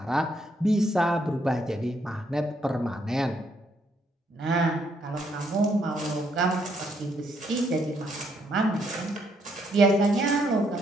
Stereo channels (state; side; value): normal; both; correlation 0.72